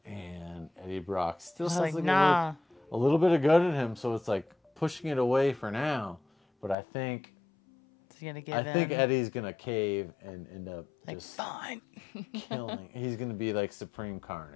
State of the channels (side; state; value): right; drops out; at 6.8 s